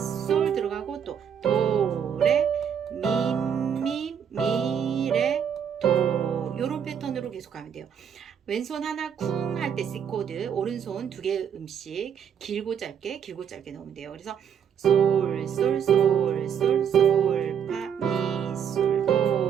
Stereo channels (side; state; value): left; quieter; 8.1 dB